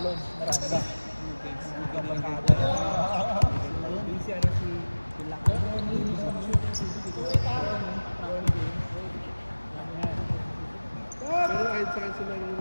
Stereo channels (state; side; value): inverted; both; correlation -1.00